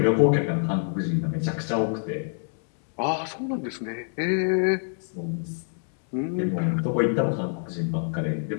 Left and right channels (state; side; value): silent; right; digital silence